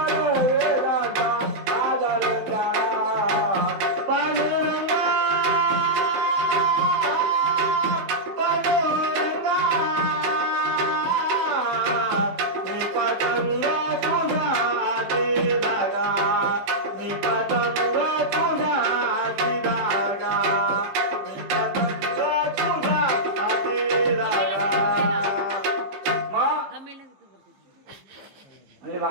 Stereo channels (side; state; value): left; late; 15 ms